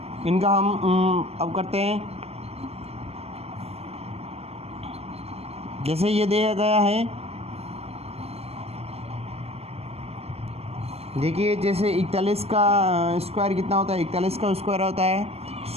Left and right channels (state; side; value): late; left; 0.29 ms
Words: इनका हम अब करते हैं, जैसे ये दिया गया है, देखिए जैसे 41 का स्क्वायर कितना होता है, 41 का स्क्वायर होता है